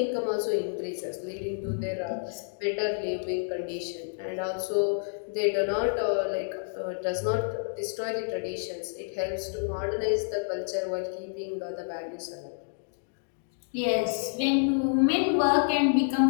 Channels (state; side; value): silent; right; digital silence